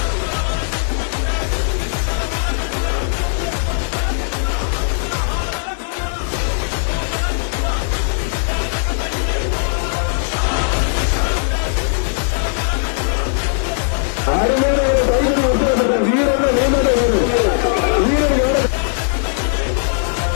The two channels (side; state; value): right; silent; digital silence